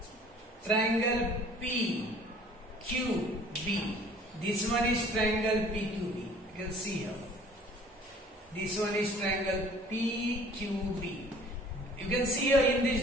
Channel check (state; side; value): normal; both; correlation 0.52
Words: triangle PQB. This one is triangle PQB. You can see here. This one is triangle PQB. You can see here in